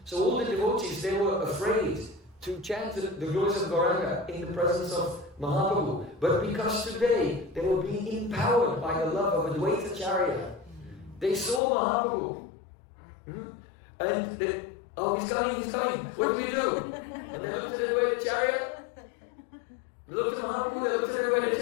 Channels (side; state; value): right; drops out; at 11.6 s